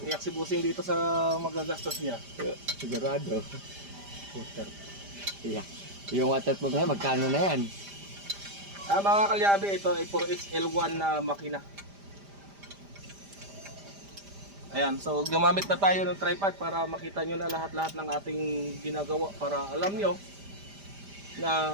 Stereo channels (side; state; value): left; late; 5.0 ms